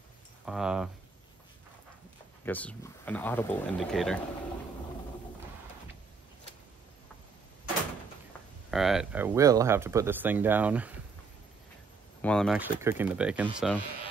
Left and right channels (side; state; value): left; quieter; 4.7 dB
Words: I guess an audible indicator. All right, I will have to put this thing down while I'm actually cooking the bacon, so